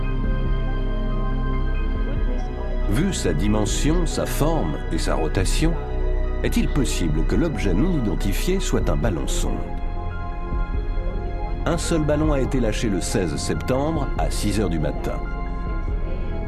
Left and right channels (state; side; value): identical; both; correlation 1.00